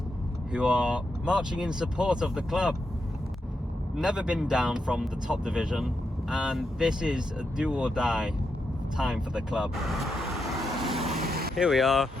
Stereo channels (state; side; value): normal; both; correlation 0.84